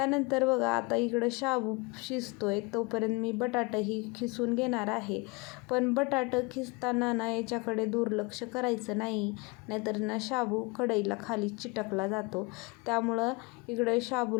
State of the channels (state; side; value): quieter; right; 27.6 dB